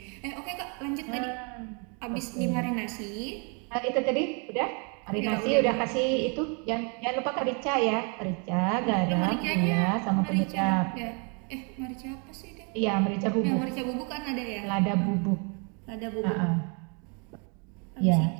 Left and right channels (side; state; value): left; quieter; 35.6 dB